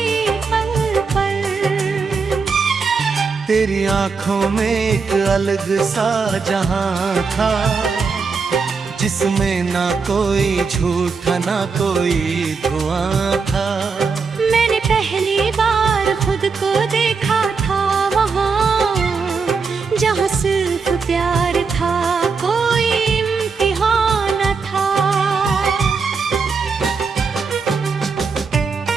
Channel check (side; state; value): left; quieter; 5.0 dB